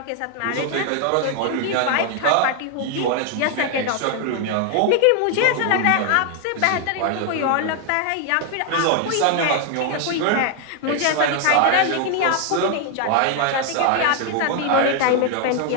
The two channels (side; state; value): both; different; correlation 0.00